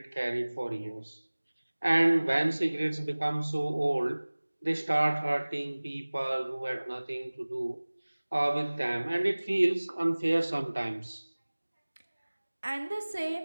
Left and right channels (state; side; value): inverted; both; correlation -1.00